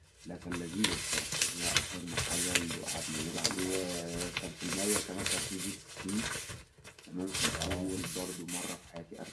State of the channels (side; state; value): both; identical; correlation 1.00